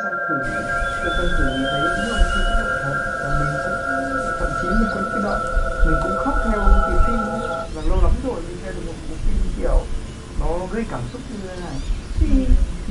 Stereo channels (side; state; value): both; identical; correlation 1.00